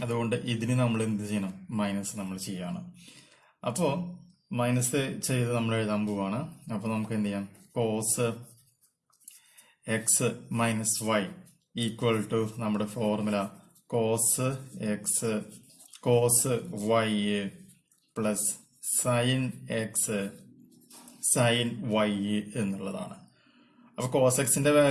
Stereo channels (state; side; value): identical; both; correlation 1.00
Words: അതുകൊണ്ട് ഇതിന് നമ്മൾ എന്ത് ചെയ്യണം? മൈനസ് നമ്മൾ ചെയ്യാണ്. അപ്പോ മൈനസ് ചെയ്ത് നമ്മൾ എഴുതാൻ പോവാണ്. അപ്പൊ നമുക്ക് എന്ത് ചെയ്യാം? Cos x minus y equal to നമ്മുടെ formula cos x cos y plus sine x sine y എന്നുള്ളതാണ്. അപ്പൊ കോസ് എക്സിന്റെ